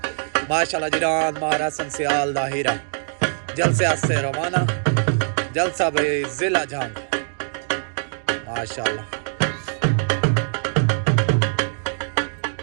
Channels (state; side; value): silent; left; digital silence